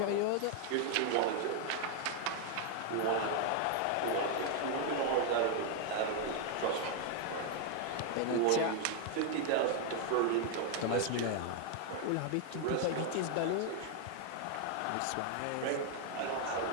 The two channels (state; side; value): different; both; correlation 0.00